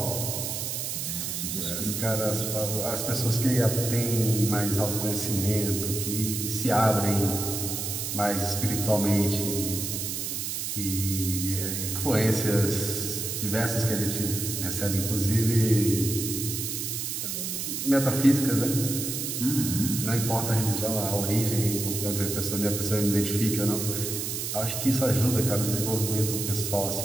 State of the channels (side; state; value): right; noise; hiss, 3 dB below the sound